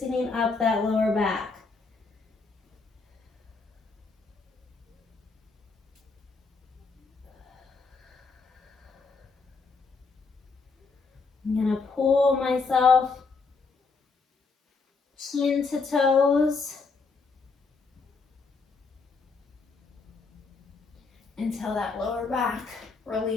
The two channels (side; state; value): right; quieter; 4.4 dB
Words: up that lower back. I'm going to pull myself chin to toes until that lower back